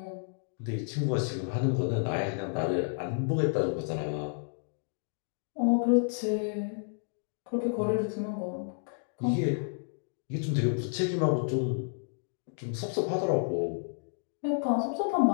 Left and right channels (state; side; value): silent; right; digital silence